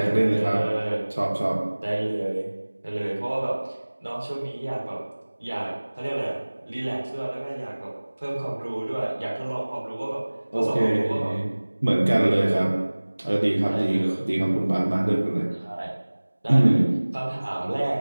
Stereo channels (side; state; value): both; inverted; correlation -1.00